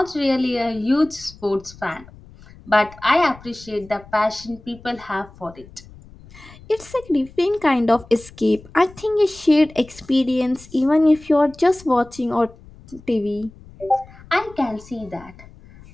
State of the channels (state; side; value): noise; left; rumble, 21 dB below the sound